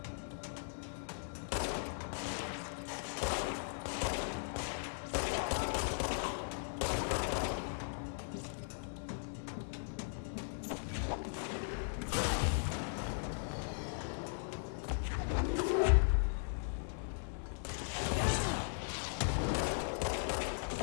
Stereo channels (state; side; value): silent; right; digital silence